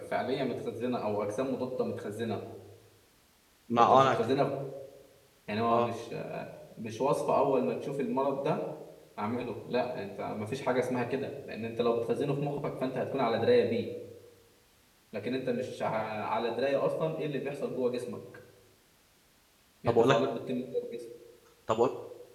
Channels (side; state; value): both; identical; correlation 1.00